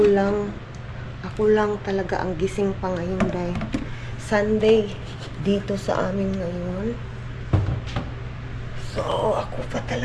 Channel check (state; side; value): identical; both; correlation 1.00